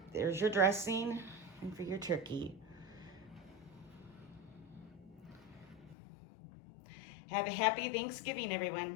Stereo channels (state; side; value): drops out; right; at 6.0 s